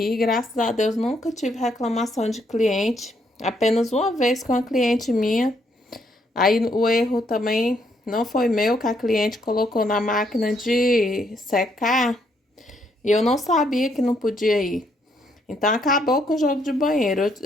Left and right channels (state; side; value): normal; both; correlation 0.73